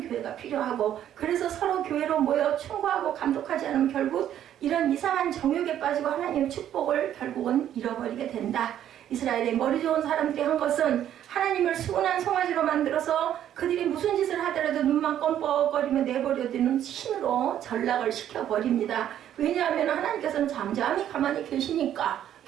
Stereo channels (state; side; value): quieter; left; 10.8 dB